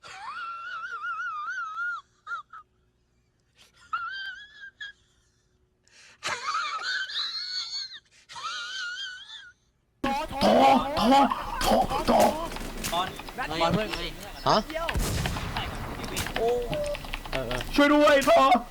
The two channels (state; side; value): identical; both; correlation 1.00